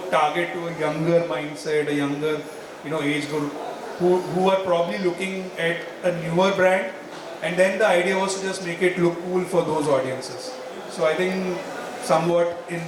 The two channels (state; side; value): identical; both; correlation 1.00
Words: target to a younger mindset, a younger, age group who are probably looking at a newer brand. And then the idea was to just make it look cool for those audiences. So I think somewhat in